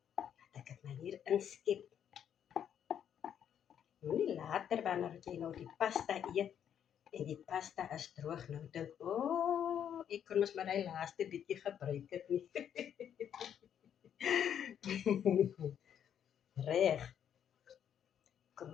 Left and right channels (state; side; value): quieter; right; 9.1 dB